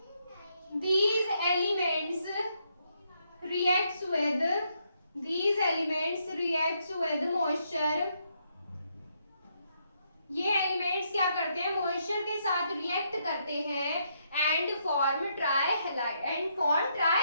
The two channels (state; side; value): inverted; both; correlation -0.76